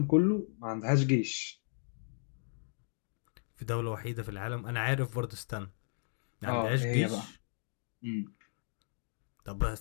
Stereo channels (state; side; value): silent; right; digital silence